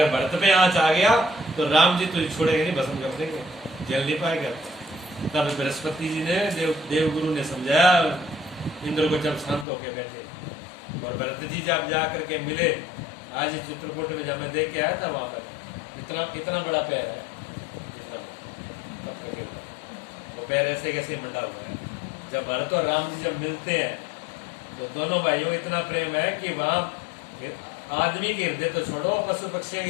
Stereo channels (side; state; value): right; drops out; at 9.7 s